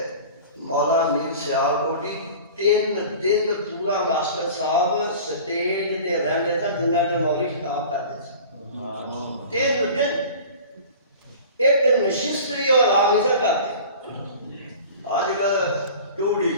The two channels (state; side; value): inverted; both; correlation -0.40